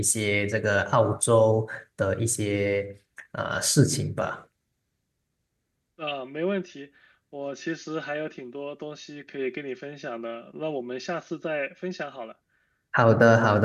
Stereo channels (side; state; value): both; identical; correlation 1.00